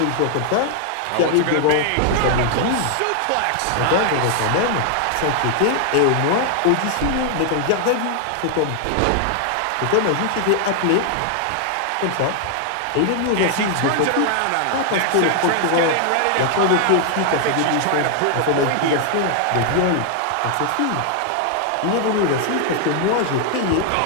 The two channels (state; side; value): different; both; correlation 0.00